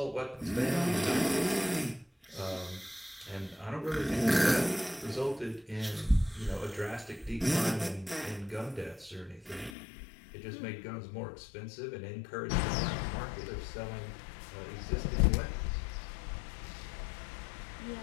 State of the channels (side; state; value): right; drops out; at 9.8 s